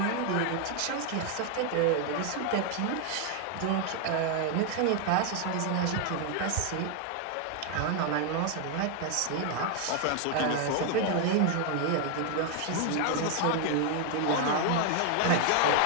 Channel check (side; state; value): both; different; correlation 0.00